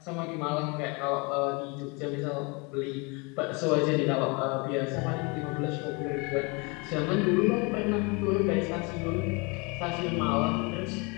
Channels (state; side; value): quieter; right; 29.0 dB